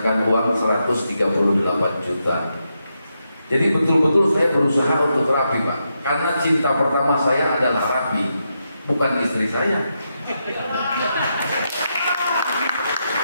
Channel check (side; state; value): both; inverted; correlation -0.84